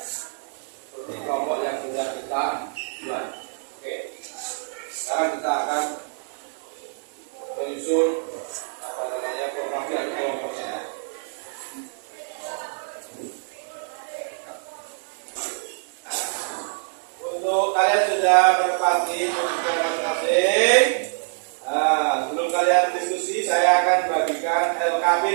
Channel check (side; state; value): left; silent; digital silence